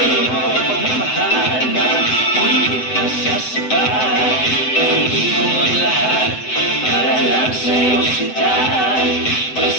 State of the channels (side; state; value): right; late; 7.9 ms